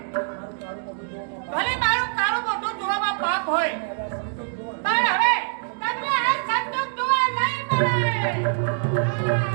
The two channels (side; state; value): left; silent; digital silence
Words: ભલે મારું કાળું મોઢું જોવામાં પાપ હોય પણ હવે તમને આ સંતોષ જોવા નહીં મળે.